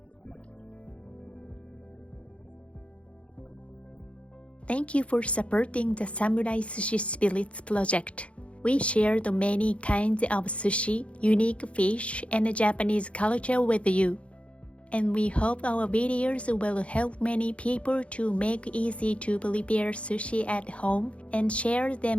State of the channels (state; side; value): late; right; 0.062 ms